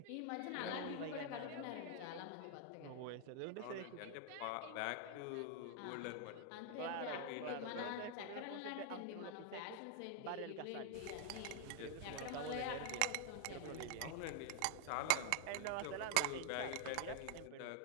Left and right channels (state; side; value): different; both; correlation 0.00